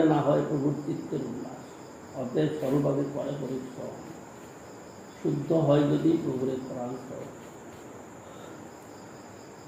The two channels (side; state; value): both; identical; correlation 1.00